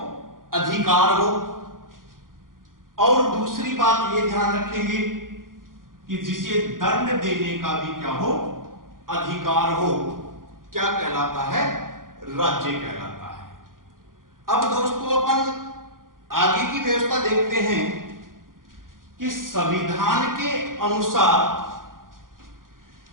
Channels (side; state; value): left; late; 0.90 ms